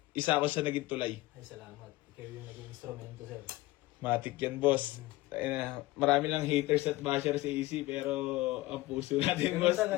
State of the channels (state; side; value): quieter; right; 19.2 dB